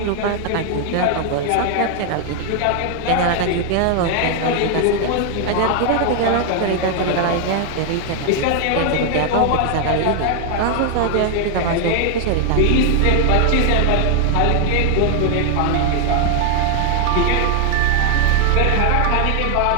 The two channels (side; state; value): both; different; correlation 0.00